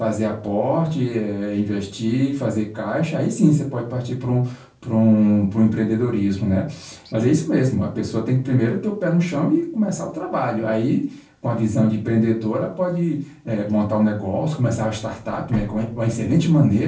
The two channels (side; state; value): both; identical; correlation 1.00